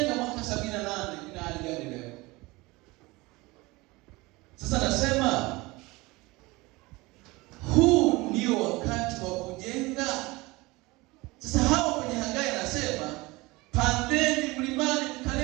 mwaka 78 ina hali gani leo? Sasa nasema huu ndio wakati wa kujenga. Sasa hawa kwenye Hagai anasema, pandeni mlimani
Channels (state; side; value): quieter; left; 22.5 dB